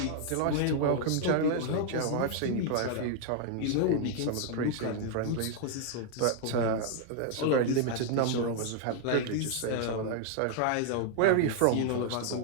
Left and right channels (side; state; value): both; different; correlation 0.00